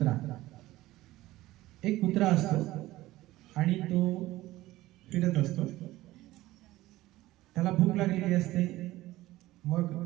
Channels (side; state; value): left; quieter; 17.0 dB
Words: एक कुत्रा असतो आणि तो फिरत असतो. त्याला भूक लागलेली असते. मग